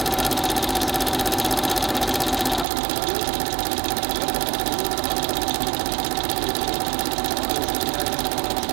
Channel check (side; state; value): left; drops out; at 2.7 s